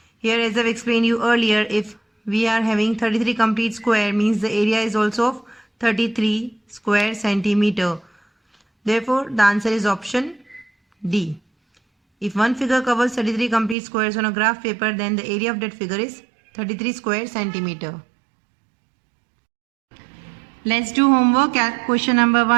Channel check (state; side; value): drops out; left; at 13.8 s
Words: Here, as I've explained you earlier, if we are having 33 complete square, means the area is also of 33 square centimeter. Therefore, the answer is option D. If one figure covers 33 complete squares on a graph paper, then the area of that figure is 33 square centimeter. Let's do homework. Question number